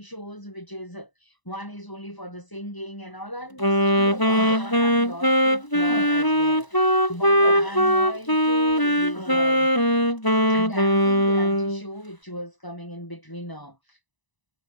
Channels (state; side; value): late; right; 1.0 ms